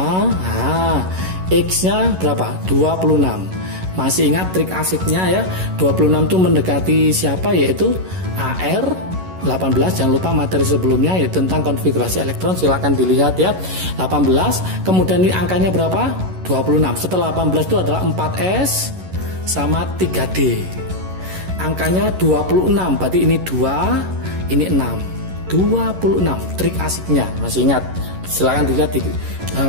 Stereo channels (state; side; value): late; left; 11 ms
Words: X-nya berapa? 26. Masih ingat trik asiknya, ya? 26 itu mendekati siapa? Yaitu AR18. Jangan lupa materi sebelumnya, yaitu tentang konfigurasi elektron. Silahkan dilihat, ya. 18. Kemudian ini angkanya berapa? 26. Setelah 18 itu adalah 4S sama 3D. Angkanya 26. Berarti ini 2, ini 6. 26. Trik asiknya. Masih ingat? Silahkan dilihat di